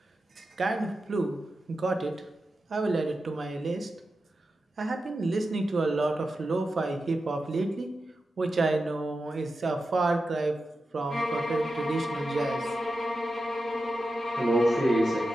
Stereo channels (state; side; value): normal; both; correlation 0.91